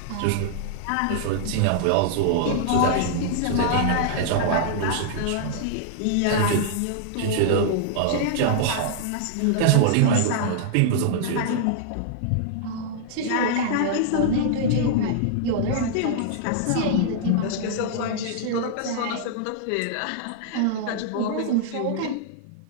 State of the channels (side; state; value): both; different; correlation -0.01